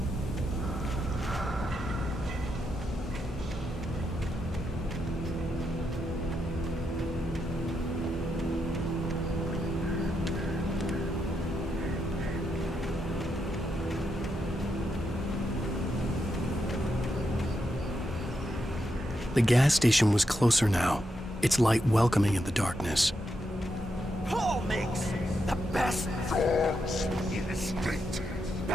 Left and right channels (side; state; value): both; normal; correlation 0.83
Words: The gas station was closer now, its light welcoming in the darkness. Paul makes the best dogs in the state.